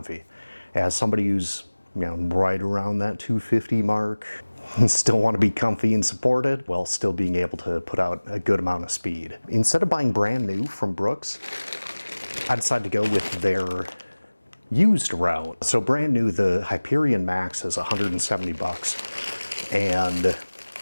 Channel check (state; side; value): inverted; both; correlation -1.00